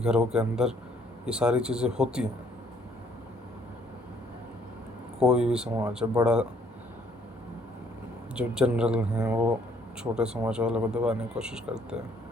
के अंदर ये सारी चीज़ें होती हैं। कोई भी समाज है बड़ा, जो जनरल हैं वो छोटे समाज वालों को दबाने की कोशिश करते हैं,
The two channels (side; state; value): both; normal; correlation 0.64